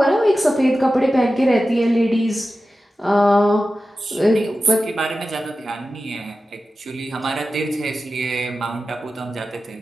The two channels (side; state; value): both; normal; correlation 0.94